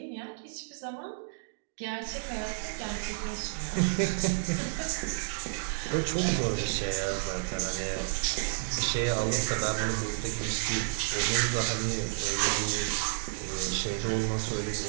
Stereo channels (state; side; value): silent; left; digital silence